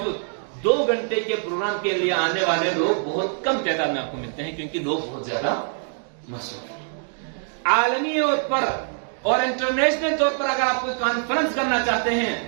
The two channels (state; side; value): silent; left; 61 dB below the other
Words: 2 گھنٹے کے پروگرام کے لیے آنے والے لوگ بہت کم تعداد میں آپ کو ملتے ہیں، کیونکہ لوگ بہت زیادہ مصروف ہیں۔ عالمی طور پر اور انٹرنیشنل طور پر اگر آپ کوئی کانفرنس کرنا چاہتے ہیں